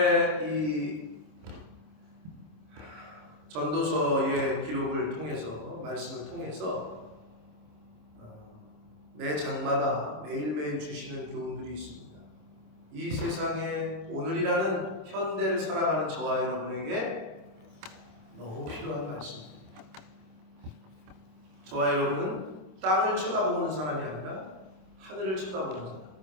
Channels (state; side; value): late; left; 26 ms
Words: 이 전도서의 기록을 통해서, 말씀을 통해서 매 장마다 매일매일 주시는 교훈들이 있습니다. 이 세상에 오늘이라는 현대를 살아가는 저와 여러분에게 너무 필요한 말씀입니다. 저와 여러분은 땅을 쳐다보는 사람이 아니라 하늘을 쳐다보는 사람,